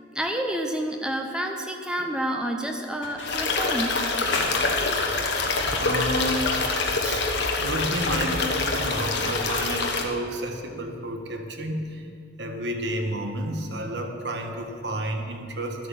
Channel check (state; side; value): normal; both; correlation 0.20